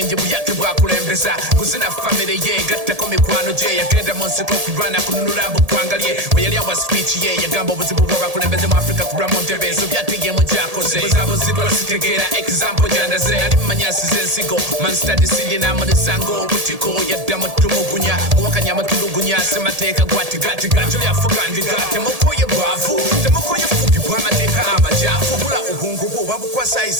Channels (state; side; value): late; left; 1.8 ms